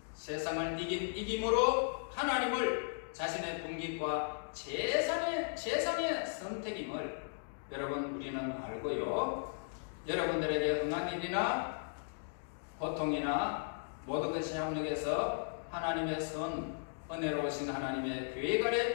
세상을 이김으로 하나님을 자신의 분깃과 재산의 선택임을 여러분 우리는 알고요. 여러분들에게 응한 일이나 고통이나 모든 것이 협력해서 하나님의 은혜로우신 하나님의 계획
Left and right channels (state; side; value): silent; right; digital silence